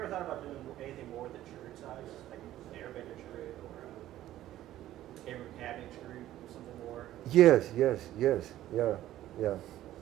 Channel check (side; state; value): left; quieter; 13.7 dB